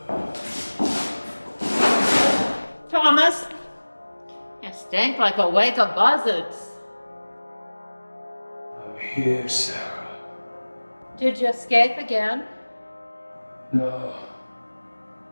Thomas, you stink like a wake of buzzards. I'm here, Sarah. Did you escape again? No.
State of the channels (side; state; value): both; inverted; correlation -1.00